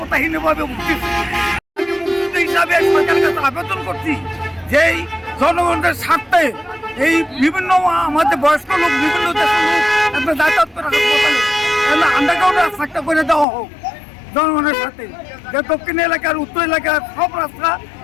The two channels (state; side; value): drops out; right; at 13.5 s